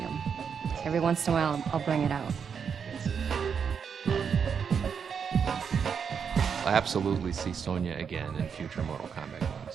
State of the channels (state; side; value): quieter; left; 6.8 dB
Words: Every once in a while, I'll bring it out. I'll absolutely see Sonya again in future Mortal Kombat games.